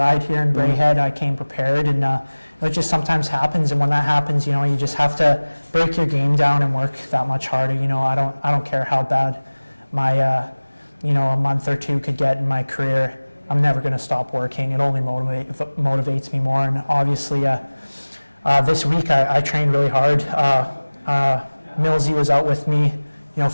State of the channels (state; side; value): inverted; both; correlation -1.00